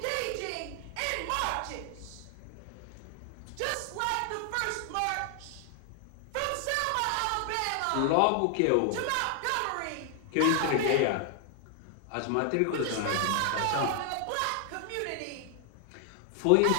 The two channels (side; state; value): both; different; correlation 0.00